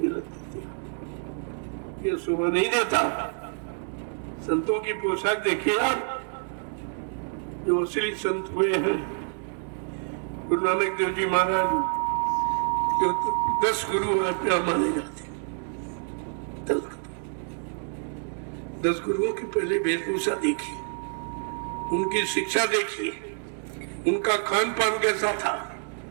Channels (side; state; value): left; silent; 60 dB below the other